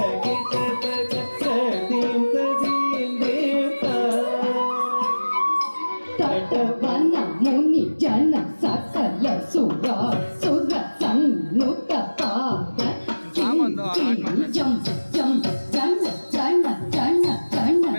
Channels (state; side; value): inverted; both; correlation -1.00